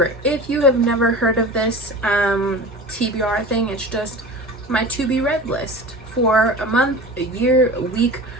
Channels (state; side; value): normal; both; correlation 0.35